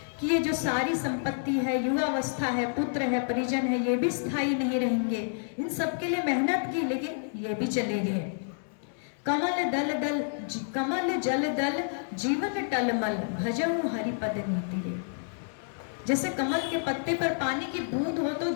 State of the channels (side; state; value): right; silent; digital silence